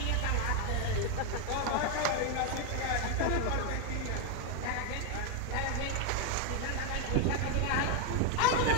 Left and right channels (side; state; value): both; different; correlation 0.01